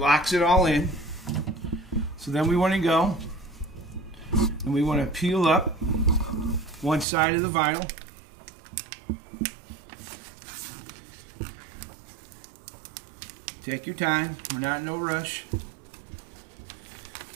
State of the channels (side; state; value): left; drops out; at 7.1 s